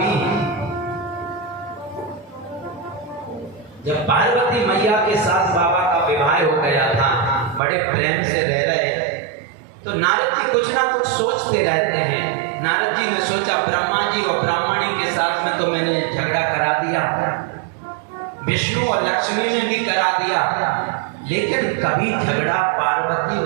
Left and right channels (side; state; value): left; drops out; at 7.6 s